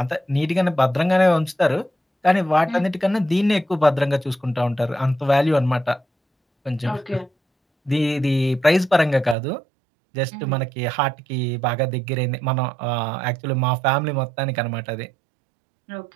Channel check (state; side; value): drops out; left; at 9.3 s